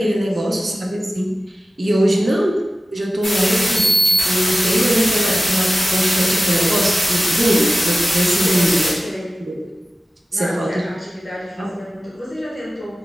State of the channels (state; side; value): normal; both; correlation 0.95